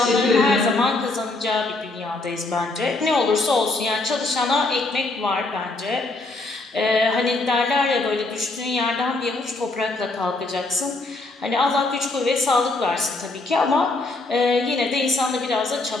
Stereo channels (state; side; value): quieter; right; 3.2 dB